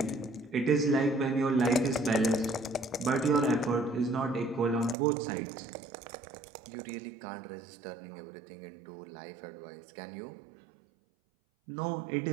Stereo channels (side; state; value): left; drops out; at 5.0 s